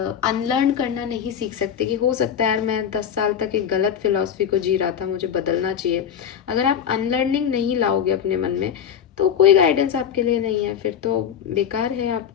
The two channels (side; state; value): right; quieter; 8.4 dB